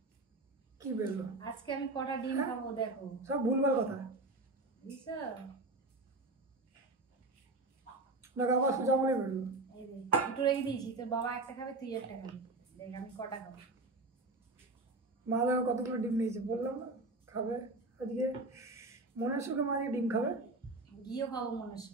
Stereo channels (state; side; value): quieter; left; 3.0 dB